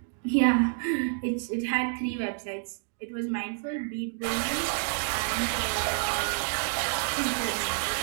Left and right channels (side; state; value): left; silent; digital silence